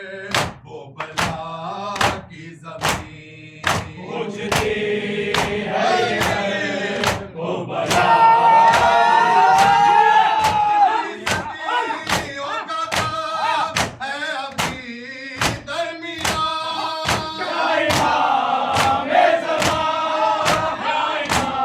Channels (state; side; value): identical; both; correlation 1.00